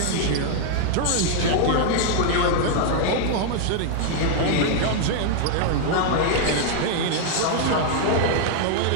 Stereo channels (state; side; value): different; both; correlation 0.00